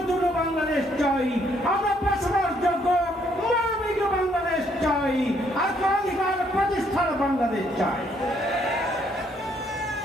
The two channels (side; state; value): both; normal; correlation 0.69